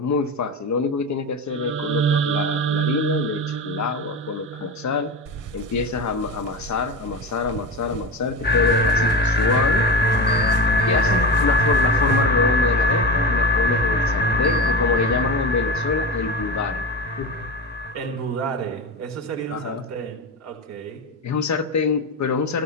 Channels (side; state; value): both; normal; correlation 0.22